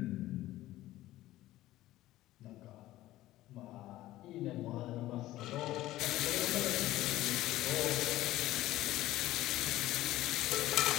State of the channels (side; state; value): right; quieter; 15.8 dB